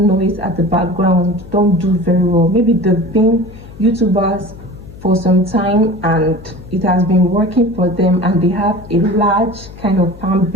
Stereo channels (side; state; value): left; noise; hum, 18 dB below the sound